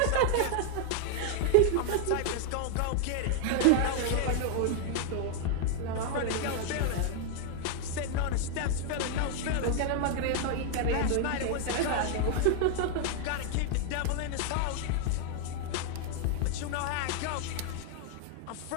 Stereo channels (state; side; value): different; both; correlation 0.00